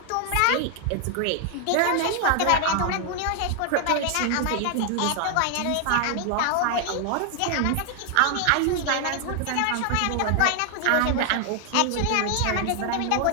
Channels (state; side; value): different; both; correlation 0.00